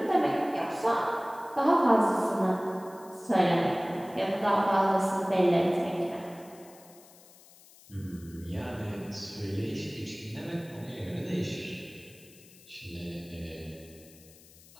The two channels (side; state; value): left; noise; hiss, 24 dB below the sound